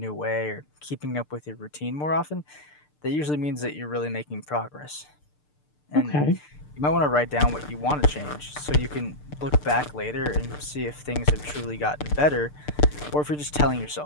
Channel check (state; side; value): late; right; 6.7 ms